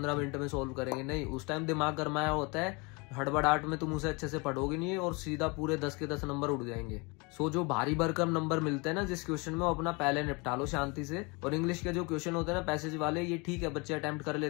मिनट में सोल्व करेंगे, नहीं, उस टाइम दिमाग गरमाया होता है हड़बड़ाहट में तुम उसे अच्छे से पढ़ोगे नहीं और सीधा पूरे 10 के 10 नंबर उड़ जाएंगे। सो जो भारी भरकम नंबर मिलते हैं ना जिस क्वेश्चन में, वो अपना पहले निपटा लो शांति से। और इंग्लिश के जो क्वेश्चन होते हैं ना पैसेज वाले, ये ठीक है बच्चे अटेम्प्ट कर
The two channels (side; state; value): right; quieter; 28.8 dB